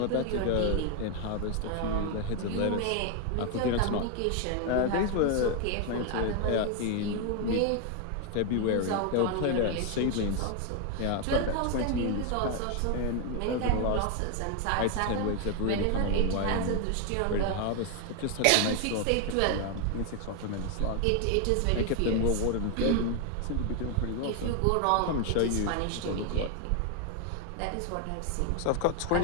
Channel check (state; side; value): different; both; correlation 0.01